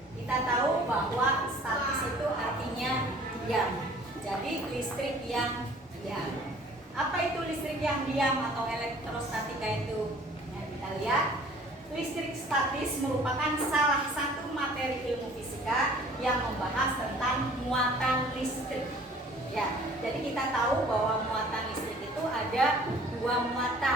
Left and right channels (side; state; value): both; normal; correlation 0.52